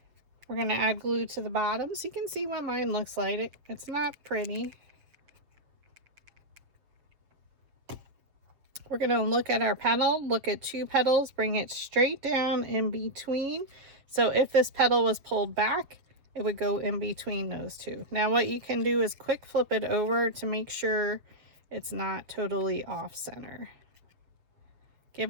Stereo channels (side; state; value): left; late; 7.5 ms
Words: We're going to add glue to the bottom so you can see what mine looks like. It's not pretty. We're going to look at our petal, look at 2 petals, bring it straight down in between. So if this petal was pulled back, it would go in between those 2. Now what you can do is quick flip it over to make sure it's not totally off center. Give